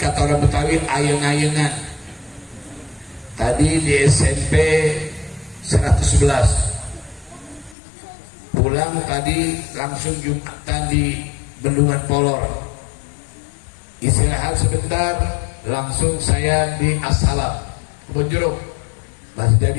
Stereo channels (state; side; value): drops out; right; at 7.8 s